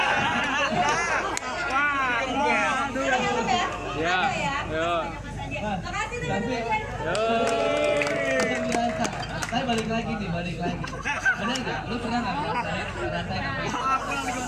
kasih teman-teman. Saya balik lagi. Bener nggak? Lu pernah nggak ngerasain apa itu?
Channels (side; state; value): both; identical; correlation 1.00